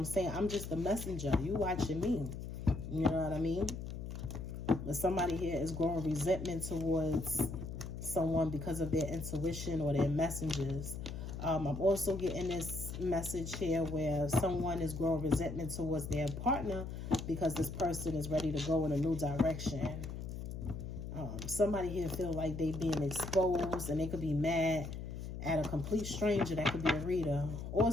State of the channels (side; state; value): left; noise; hum, 7 dB below the sound